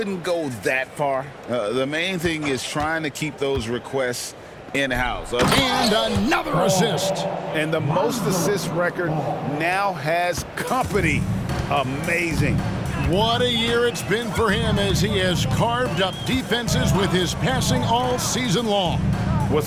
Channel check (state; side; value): identical; both; correlation 1.00